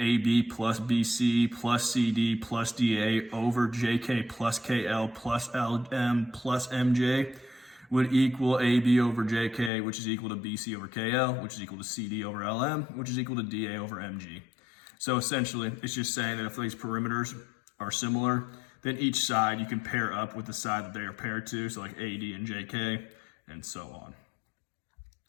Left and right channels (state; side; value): drops out; right; at 9.7 s